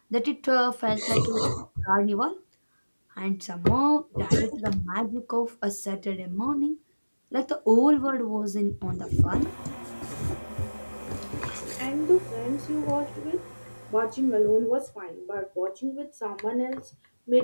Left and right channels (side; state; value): both; inverted; correlation -1.00